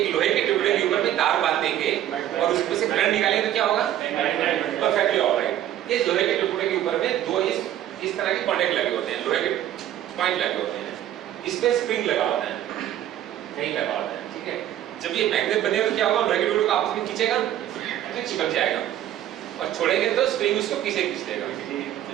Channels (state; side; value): quieter; left; 12.0 dB